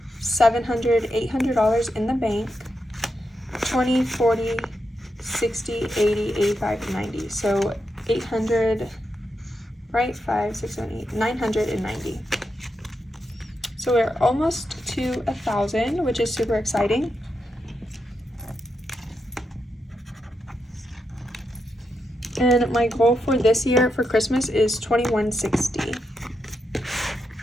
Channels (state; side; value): normal; both; correlation 0.85